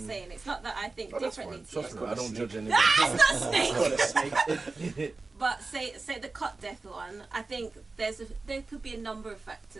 It's not that I think differently to Trust you. me, I don't judge anyone. That's not snake. But say the cut death one, I think there could be a number of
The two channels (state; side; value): quieter; left; 3.7 dB